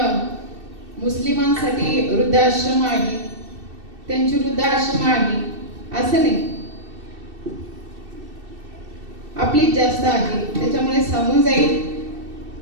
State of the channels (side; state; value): left; late; 2.7 ms